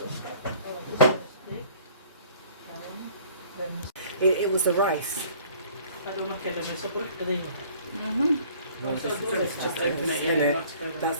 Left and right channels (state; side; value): inverted; both; correlation -0.53